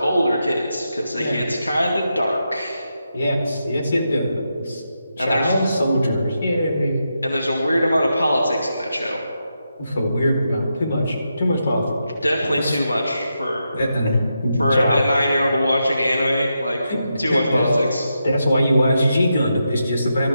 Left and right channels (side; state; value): both; inverted; correlation -0.85